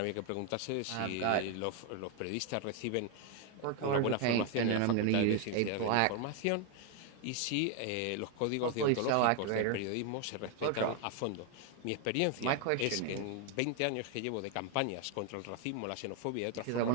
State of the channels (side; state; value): both; different; correlation 0.01